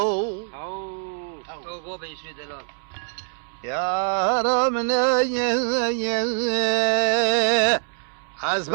يا رامني از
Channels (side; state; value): left; silent; 62 dB below the other